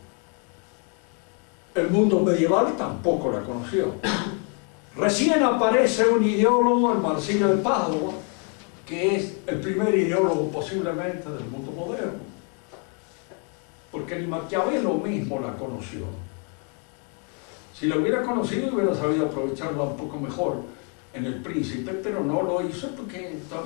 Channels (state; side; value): quieter; right; 39.1 dB